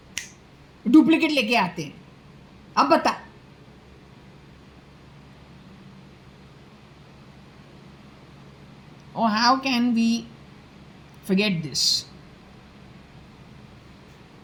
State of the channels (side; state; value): both; identical; correlation 1.00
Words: डुप्लीकेट लेके आते हैं. अब बता, or how can we forget this?